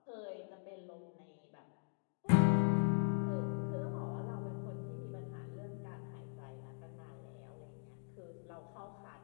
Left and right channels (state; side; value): silent; right; digital silence